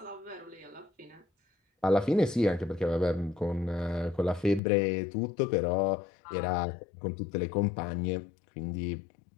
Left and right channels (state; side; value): drops out; right; at 4.6 s